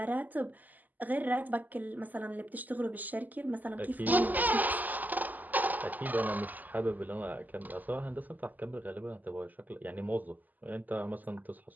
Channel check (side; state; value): left; late; 0.083 ms